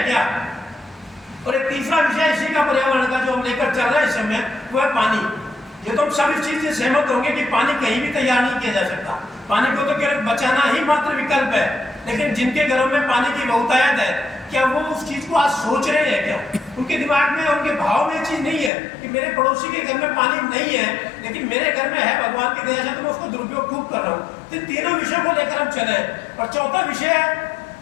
क्या। और एक तीसरा विषय इसी का पर्यावरण का जो हम लेकर चल रहे हैं इस समय वो है पानी। ये तो हम सब इस चीज से सहमत होंगे कि पानी कहीं भी तैयार नहीं किया जा सकता, पानी को तो केवल बचाना ही मात्र विकल्प है। लेकिन जिनके घरों में पानी की बहुतायत है क्या वो उस चीज को आज सोच रहे हैं क्या। उनके दिमाग में उनके भाव में ये चीज नहीं है कि मेरे पड़ोसी के घर में पानी नहीं है लेकिन मेरे घर में है, भगवान की दया से तो मैं उसको दुरुपयोग खूब कर रहा हूँ। तो तीनों विषयों को लेकर हम चले। और चौथा विषय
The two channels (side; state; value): right; drops out; at 18.7 s